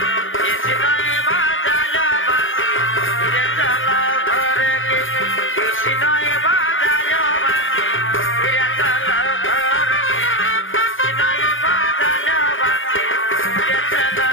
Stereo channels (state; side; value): late; right; 0.58 ms